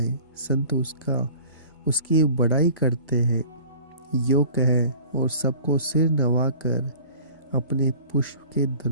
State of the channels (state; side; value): inverted; both; correlation -0.46